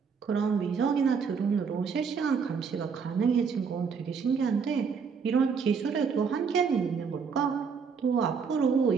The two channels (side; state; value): left; quieter; 6.0 dB